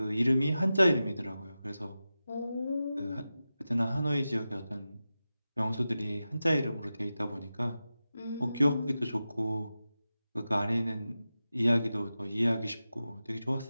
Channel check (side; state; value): both; inverted; correlation -0.93